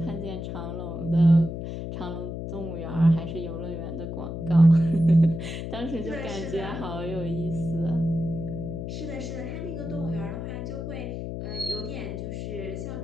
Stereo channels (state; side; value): noise; left; hum, 5 dB below the sound